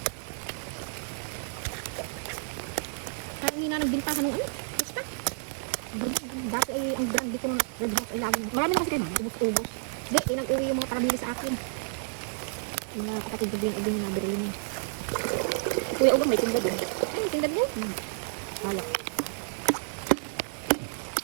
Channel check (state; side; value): silent; left; 58 dB below the other